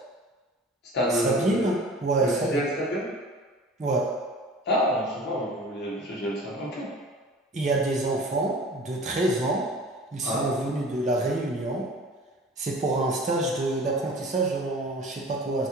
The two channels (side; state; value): both; normal; correlation 0.42